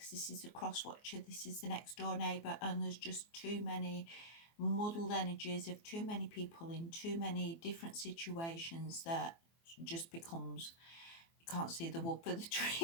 this is the cross watcher, this is the next door neighbour, and there's just too many muddled energies of too many people in too many different situations that just becomes you can't see the wood for the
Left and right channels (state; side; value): late; right; 24 ms